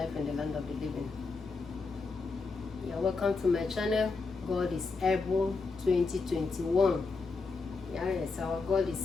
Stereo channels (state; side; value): quieter; right; 4.1 dB